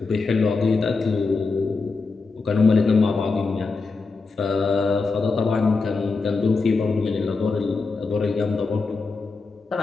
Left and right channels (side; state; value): right; quieter; 4.2 dB